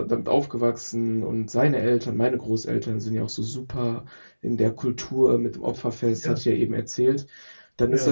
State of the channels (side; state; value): both; inverted; correlation -1.00